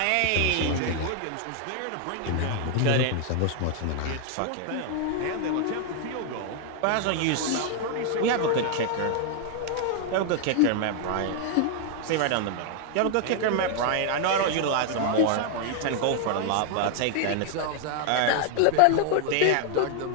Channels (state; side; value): different; both; correlation 0.00